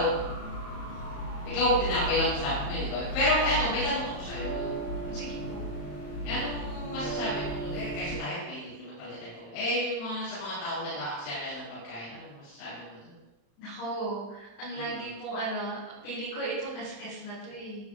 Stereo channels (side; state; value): right; late; 35 ms